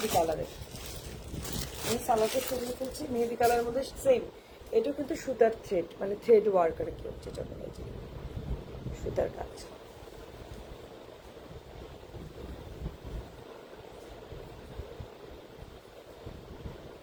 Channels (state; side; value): identical; both; correlation 1.00